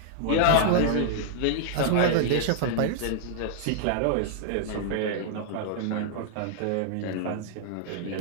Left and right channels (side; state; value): both; different; correlation -0.01